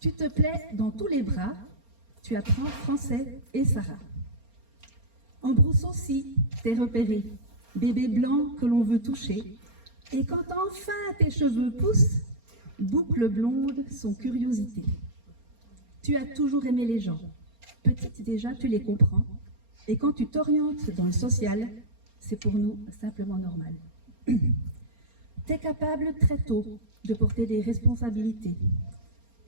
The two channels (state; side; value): late; left; 4.3 ms